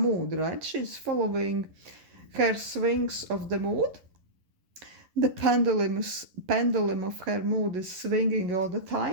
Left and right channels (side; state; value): left; late; 11 ms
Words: right? She's following her swings of the mood. The pendulum of her mood is swinging all the